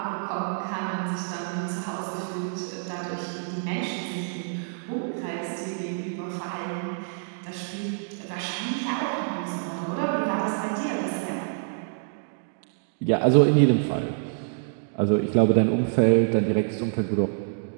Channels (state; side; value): silent; left; digital silence